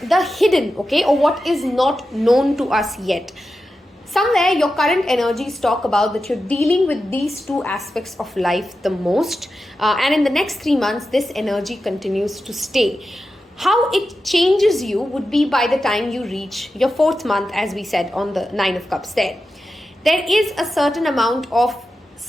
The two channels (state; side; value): normal; both; correlation 0.91